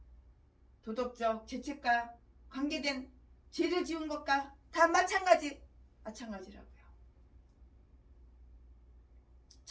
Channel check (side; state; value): both; identical; correlation 1.00